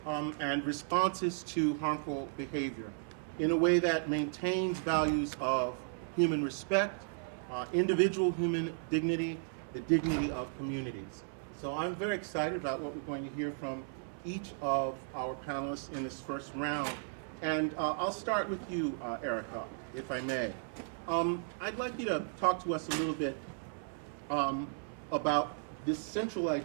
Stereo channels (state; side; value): silent; left; 54 dB below the other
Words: and responses to harmful behavior in a way that maintains values of human respect, individual human dignity, the dignity of communities. So I'm very excited about what we're going to hear from each of our panelists in this first round. And I'll start with you, Erica, if I may. I'd like you to talk to us a little bit about this central